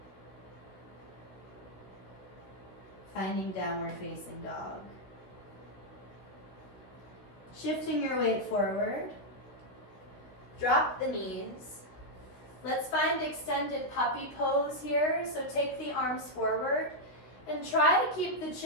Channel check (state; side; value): late; right; 16 ms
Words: Finding downward facing dog. Shifting your weight forward. Drop the knees. Let's find extended puppy pose here. So take the arms forward and try to keep the